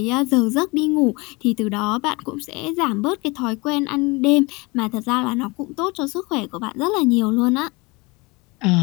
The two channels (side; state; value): right; quieter; 25.9 dB